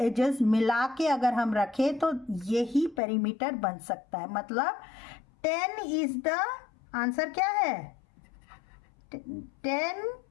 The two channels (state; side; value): drops out; right; at 3.0 s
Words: मिला के अगर हम रखें तो यही पेरीमीटर बन सकता है। मतलब 10 इज द आंसर, क्या है, 10